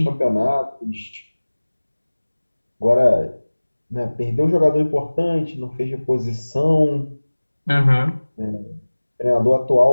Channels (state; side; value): inverted; both; correlation -1.00